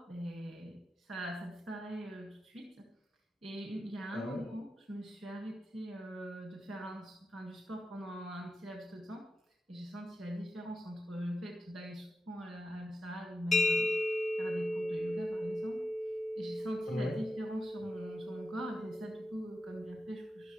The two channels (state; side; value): normal; both; correlation 0.90